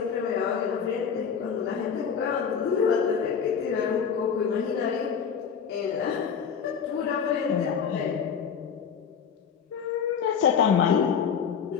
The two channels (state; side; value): quieter; right; 7.0 dB